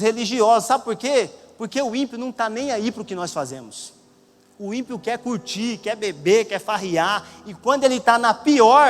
religiosos. Sabe por quê? Porque o ímpio não está nem aí para o que nós fazemos. O ímpio quer curtir, quer beber, quer farriar, e quando ele está na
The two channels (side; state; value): both; identical; correlation 1.00